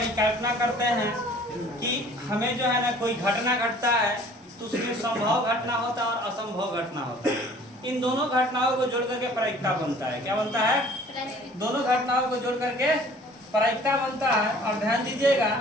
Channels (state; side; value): normal; both; correlation 0.51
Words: करते हैं कि हमें जो है ना कोई घटना घटता है तो उसमें संभव घटना होता है और असंभव घटना होता है। इन दोनों घटनाओं को जोड़ करके परिक्ता बनता है। क्या बनता है? दोनों घटनाओं को जोड़ करके परिक्ता बनता है। और ध्यान दीजिएगा